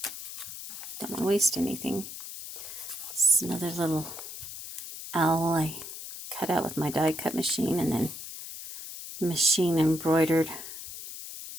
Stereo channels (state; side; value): noise; left; hiss, 10 dB below the sound